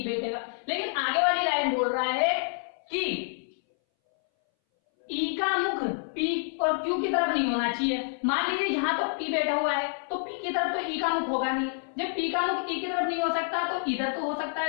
बैठेगा। लेकिन आगे वाली लाइन बोल रहा है कि ई का मुख पी और क्यू की तरफ नहीं होना चाहिए। मान लीजिए यहाँ तो पी बैठा हुआ है तो पी की तरफ तो ई का मुख होगा नहीं। जब पी का मुख ई की तरफ नहीं हो सकता तो इधर तो हो सकता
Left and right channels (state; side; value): silent; right; 59 dB below the other